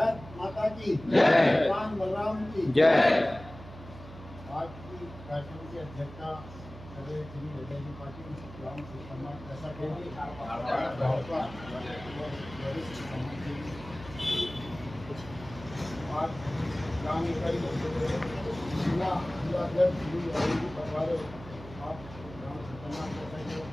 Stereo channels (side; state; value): right; noise; hum, 15 dB below the sound